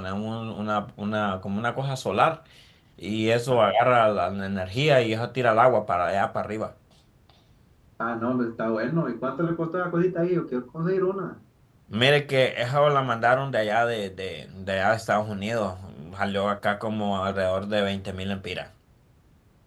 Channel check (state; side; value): identical; both; correlation 1.00